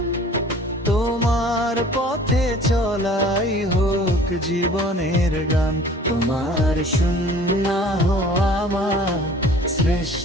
তোমার পথে চলাই হোক জীবনের গান, তোমার শূন্য আমার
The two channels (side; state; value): both; normal; correlation 0.49